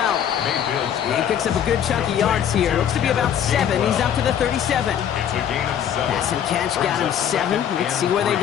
He picks up a good chunk of yards here. Looks to be about 7. He's up to the 37. Pass and catch got him 7. Let's see where they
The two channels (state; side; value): quieter; right; 9.3 dB